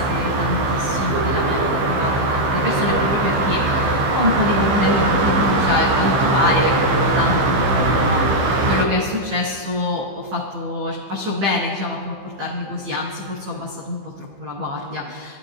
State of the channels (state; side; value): late; left; 15 ms